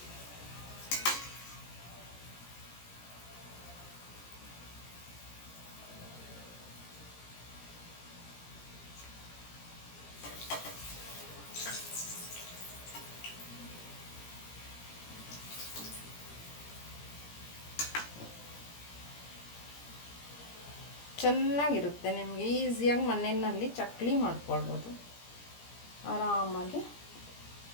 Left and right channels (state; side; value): late; right; 17 ms